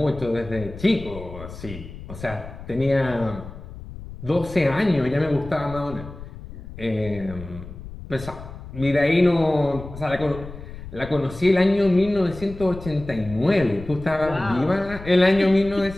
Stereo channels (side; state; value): left; noise; rumble, 14 dB below the sound